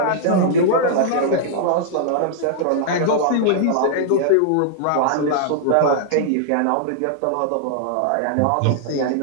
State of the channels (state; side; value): different; both; correlation -0.01